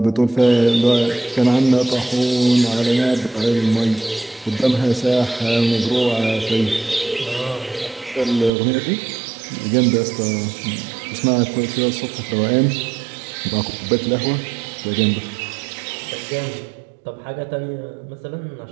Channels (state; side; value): drops out; left; at 8.5 s